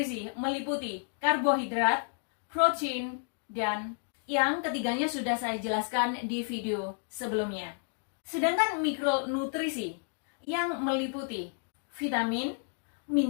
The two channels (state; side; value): silent; right; 57 dB below the other